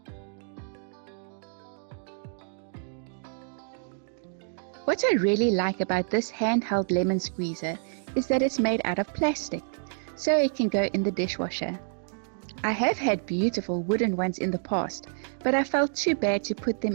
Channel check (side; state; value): left; silent; digital silence